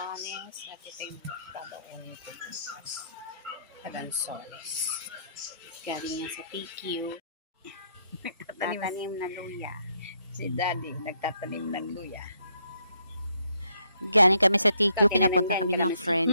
at ito yung babaunin ko na lansones. Galing yan sa TQ. Nagtatanim ng luya. Si Daddy nagtatanim ng luya. Galing kami sa TQ, pinapunta kami ng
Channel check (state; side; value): inverted; both; correlation -0.72